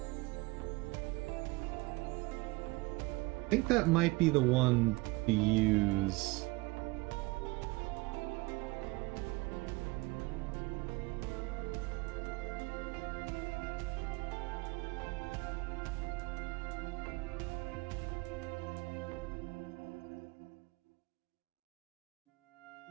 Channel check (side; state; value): left; quieter; 23.6 dB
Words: I think that might be the one to use.